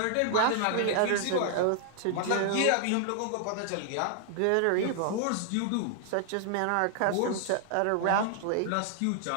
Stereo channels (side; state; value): both; different; correlation 0.00